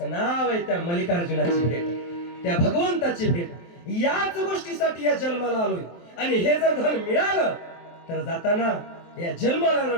नाव आहे त्या मल्लिकार्जुनाची भेट, त्या भगवंताची भेट. याच गोष्टीसाठी या जन्माला आलोय. आणि हे जर धन मिळालं तर जाताना या जन्माला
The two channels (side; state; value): right; late; 23 ms